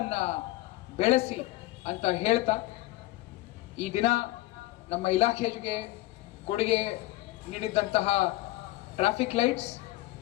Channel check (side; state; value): right; quieter; 18.0 dB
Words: ಬೆಳೆಸಿ ಅಂತ ಹೇಳ್ತಾ, ಈ ದಿನ ನಮ್ಮ ಇಲಾಖೆಗೆ ಕೊಡುಗೆ ನೀಡಿದಂತಹ ಟ್ರಾಫಿಕ್ ಲೈಟ್ಸ್